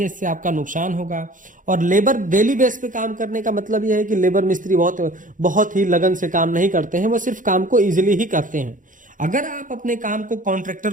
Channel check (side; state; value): left; late; 0.38 ms